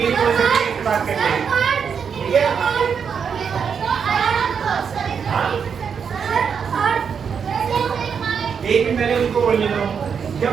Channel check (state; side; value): quieter; left; 6.7 dB